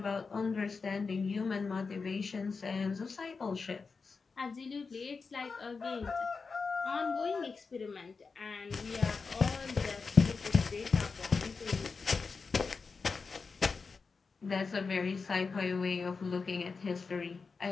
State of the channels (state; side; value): quieter; right; 4.7 dB